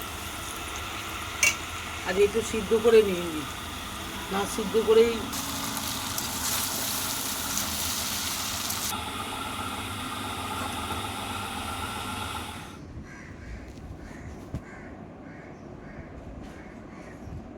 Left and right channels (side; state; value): both; identical; correlation 1.00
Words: আর একটু সিদ্ধ করে নিয়ে নি, না সিদ্ধ করেই